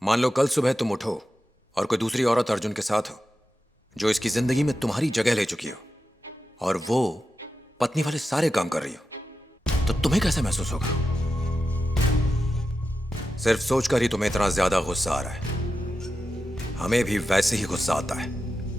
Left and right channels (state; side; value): normal; both; correlation 0.91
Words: मान लो कल सुबह तुम उठो और कोई दूसरी औरत अर्जुन के साथ हो जो इसकी जिंदगी में तुम्हारी जगह ले चुकी हो, और वो पत्नी वाले सारे काम कर रही हो, तो तुम्हें कैसे महसूस होगा? सिर्फ सोचकर ही तुम्हें इतना ज्यादा गुस्सा आ रहा है। हमें भी वैसे ही गुस्सा आता है।